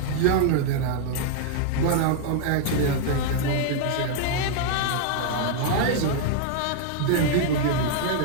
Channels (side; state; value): both; different; correlation -0.01